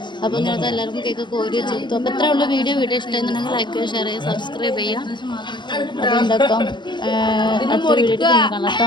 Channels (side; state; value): right; late; 0.22 ms